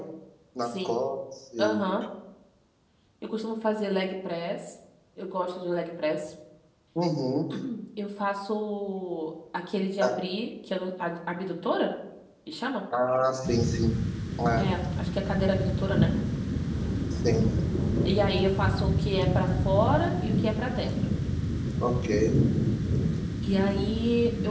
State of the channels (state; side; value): identical; both; correlation 1.00